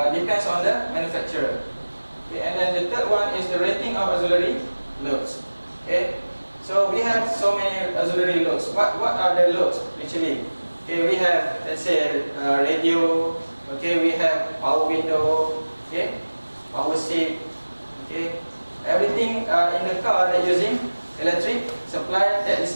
depends on the manufacturer. Okay, and then the third one is the rating of auxiliary loads. Okay, so we have so many auxiliary loads. What are the loads actually? Okay, we have, let's say, radio. Okay, we have power window. Okay, power seat. Okay, everything in the car that using electric supply, that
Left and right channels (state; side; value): inverted; both; correlation -1.00